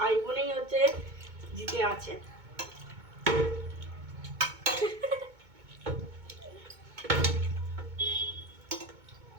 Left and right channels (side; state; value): left; late; 2.2 ms